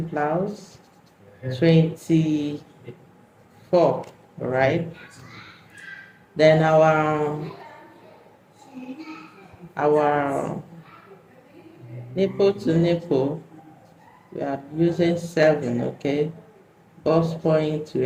blouse, 24, right? Then our nipple to nipple, we are using 7, okay? Bust point,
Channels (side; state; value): both; identical; correlation 1.00